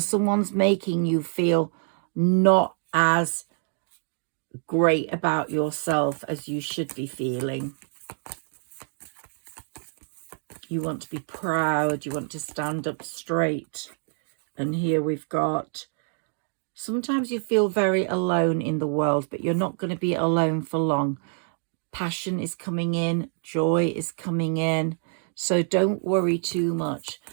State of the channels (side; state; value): left; silent; 61 dB below the other